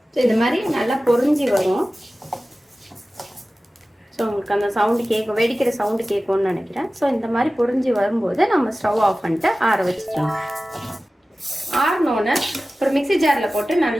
ஸோ இது மாதிரி நல்லா பொரிஞ்சு வரும். ஸோ உங்களுக்கு அந்த சவுண்டு கேட்கும், வெடிக்கிற சவுண்டு கேட்கும்னு நினைக்கிறேன். ஸோ இந்த மாதிரி பொரிஞ்சு வரும்போது நம்ம ஸ்டவ் ஆஃப் பண்ணிட்டு ஆற வச்சுக்கலாம். ஆறினோன்னு ஒரு மிக்ஸி ஜாரில் போட்டு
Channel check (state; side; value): normal; both; correlation 0.96